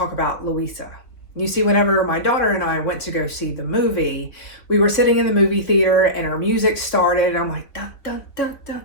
about Louisa. You see, whenever my daughter and I went to go see the movie, we were sitting in the movie theater and our music started. And I'm like, dun, dun, dun, dun,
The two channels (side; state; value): right; late; 3.3 ms